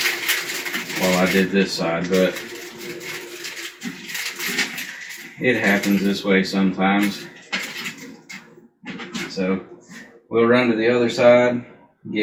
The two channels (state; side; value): identical; both; correlation 1.00